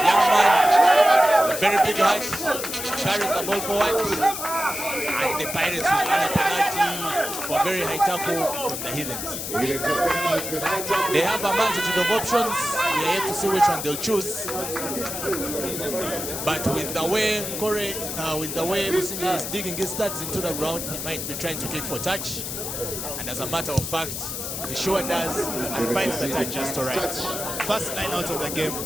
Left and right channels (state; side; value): noise; left; hiss, 5 dB below the sound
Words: man, a very big height, carries the ball forward, and the Pirates will earn a penalty for a very high tackle from the Heathens. They have a multitude of options. We are yet to see which one they'll choose. But with the way Businje is digging his studs into the ground, he might be trying to kick for touch. And as a matter of fact, he sure does and finds the touch just all right. First line out of the game,